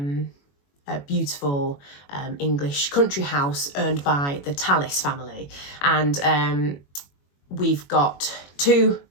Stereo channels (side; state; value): right; late; 21 ms